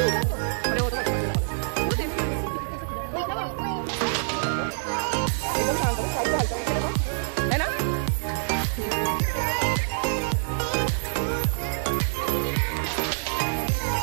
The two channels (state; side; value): silent; left; digital silence